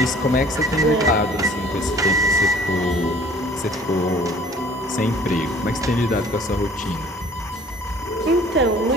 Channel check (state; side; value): normal; both; correlation 0.53